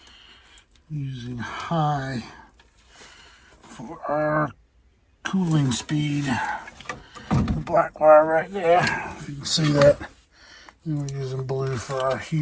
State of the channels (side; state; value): both; identical; correlation 1.00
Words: using high for our cooling speed. The black wire right there, if you can see that. And we're using blue for our